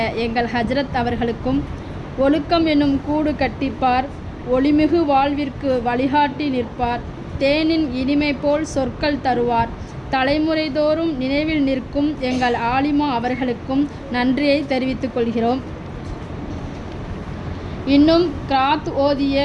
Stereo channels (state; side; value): identical; both; correlation 1.00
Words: எங்கள் ஹஜ்ரத் அவர்களுக்கும் ஒழுக்கம் என்னும் கூடு கட்டிப்பார், ஒளிமிகு வாழ்விற்கு வழிகாட்டி நிற்பார், தேனின் இனிமை போல் சொற்கள் தருவார், தலைமுறை தோறும் நினைவில் நிற்கும் எங்கள் ஆலிமா அவர்களுக்கும் நன்றியை தெரிவித்துக் கொள்கிறோம். இன்னும் கிராத் ஓதிய,